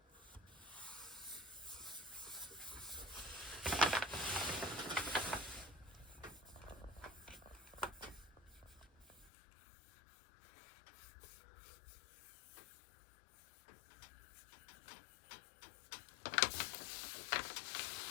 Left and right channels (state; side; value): drops out; right; at 9.3 s